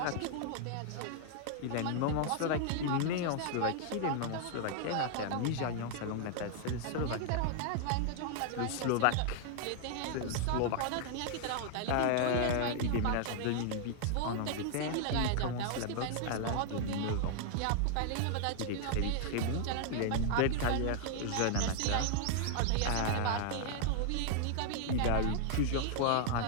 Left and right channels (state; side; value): different; both; correlation 0.00